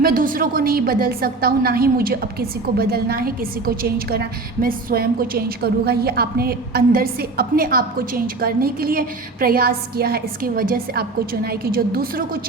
दूसरों को नहीं बदल सकता हूँ, ना ही मुझे अब किसी को बदलना है, किसी को चेंज करना है, मैं स्वयं को चेंज करूँगा। ये आपने अंदर से अपने आप को चेंज करने के लिए प्रयास किया है। इसकी वजह से आपको चुना है कि जो दूसरों को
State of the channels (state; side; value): quieter; left; 3.6 dB